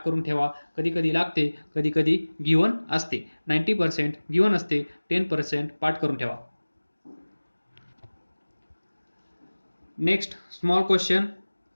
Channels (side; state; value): both; inverted; correlation -1.00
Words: करून ठेवा, कधी कधी लागते, कधी कधी गिवन असते. 90% गिवन असते, 10% पाठ करून ठेवा. Next small question.